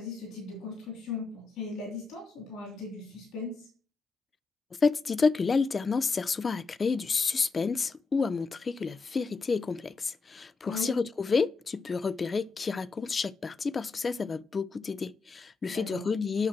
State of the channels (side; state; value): right; quieter; 4.4 dB